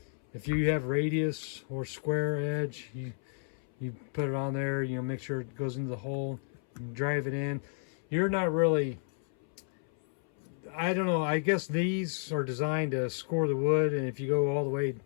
if you have radius or square edge, you put it on there, you know, make sure it goes into the hole, and drive it in. You're not really, I don't know, I guess these are designed to score the wood, and if you go all the way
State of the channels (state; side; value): silent; right; 57 dB below the other